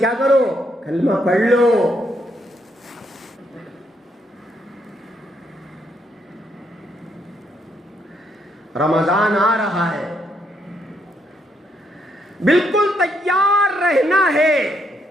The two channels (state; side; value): normal; both; correlation 0.75